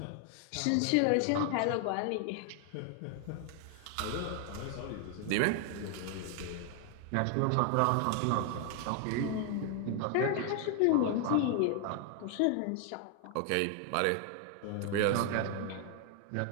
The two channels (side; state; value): both; different; correlation 0.00